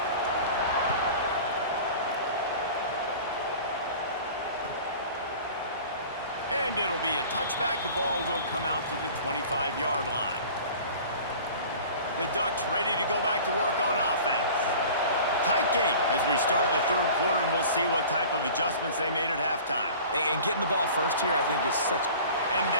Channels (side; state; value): both; inverted; correlation -0.42